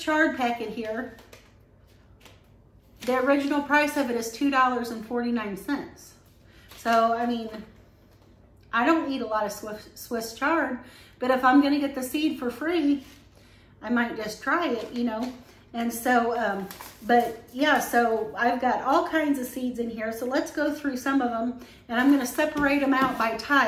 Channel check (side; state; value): both; identical; correlation 1.00